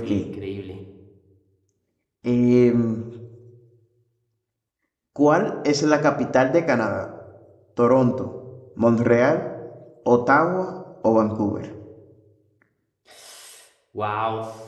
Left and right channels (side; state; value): both; identical; correlation 1.00